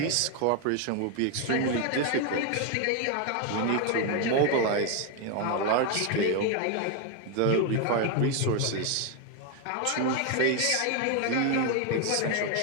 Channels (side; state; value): both; different; correlation 0.01